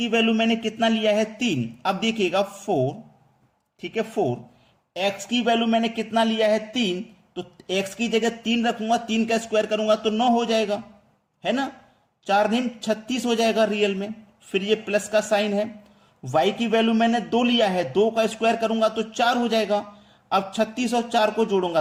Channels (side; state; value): both; identical; correlation 1.00